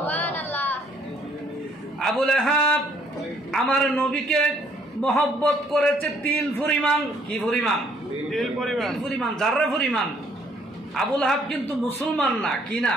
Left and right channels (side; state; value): both; normal; correlation 0.65